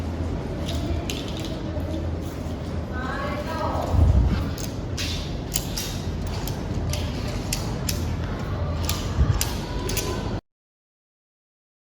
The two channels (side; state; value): both; identical; correlation 1.00